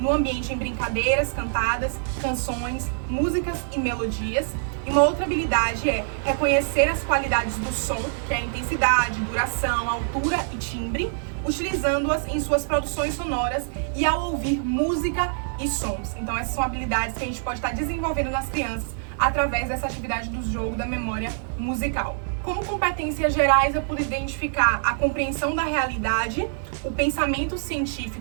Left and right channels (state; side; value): silent; left; digital silence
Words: no ambiente em brincadeiras, cantadas, canções, músicas e melodias. E uma outra habilidade é reconhecer as qualidades do som, que é a intensidade, duração, altura e timbre, utilizando-as em suas produções sonoras e ao ouvir música e sons. Então essas são habilidades que a gente pode estar desenvolvendo nas crianças através dessa atividade do jogo da memória musical. Como competências gerais, eu pude identificar a compreensão da realidade, o pensamento